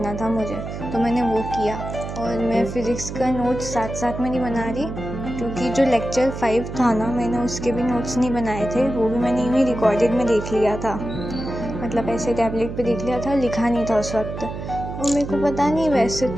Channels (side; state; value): right; noise; hum, 8 dB below the sound